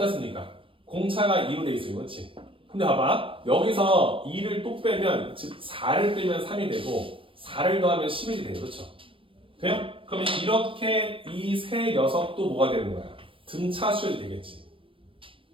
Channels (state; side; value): late; left; 0.25 ms